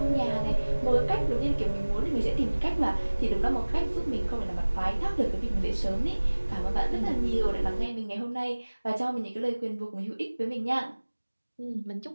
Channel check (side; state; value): both; inverted; correlation -1.00